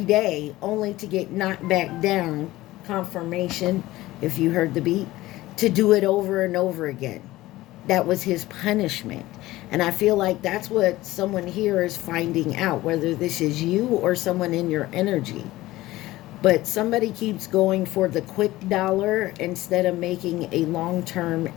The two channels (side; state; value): right; quieter; 17.4 dB